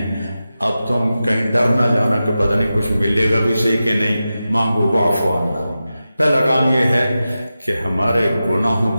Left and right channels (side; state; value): both; inverted; correlation -0.93